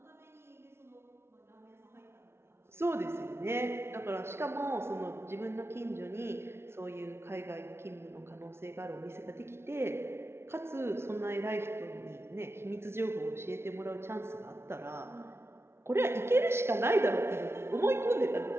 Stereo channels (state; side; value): late; left; 0.12 ms